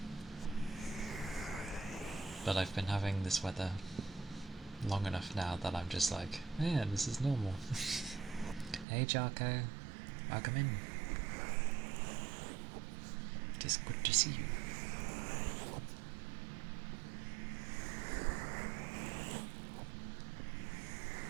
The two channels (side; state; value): left; drops out; at 8.8 s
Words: But I've been having this weather long enough now that I'm just like, yeah, this is normal. Hey Jarko, welcome in. It is good to see you.